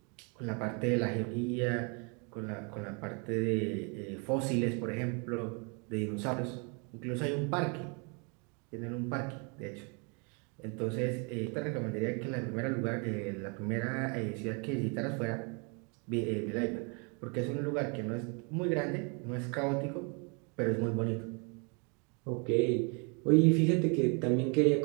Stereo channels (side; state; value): left; quieter; 34.6 dB